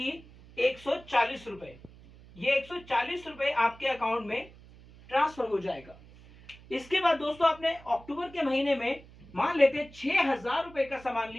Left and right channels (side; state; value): right; noise; hum, 22 dB below the sound